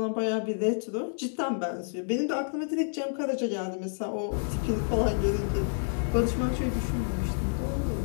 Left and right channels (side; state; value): right; silent; digital silence